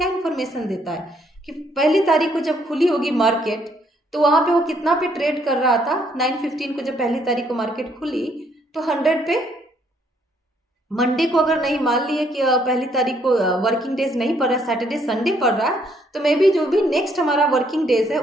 इंफॉर्मेशन देता है कि पहली तारीख को जब खुली होगी मार्केट तो वहां पे वो कितना पे ट्रेड कर रहा था। 9:15 को जब पहली तारीख को मार्केट खुली तो 100 पे। मंडे को अगर नहीं मान लिए कि पहली तारीख को वर्किंग डेज नहीं पड़ रहा है, सैटरडे संडे पड़ रहा है, तो मे बी जो भी नेक्स्ट हमारा वर्किंग डेज है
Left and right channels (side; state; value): both; normal; correlation 0.69